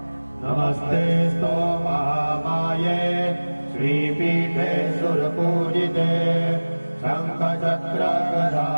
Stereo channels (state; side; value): inverted; both; correlation -1.00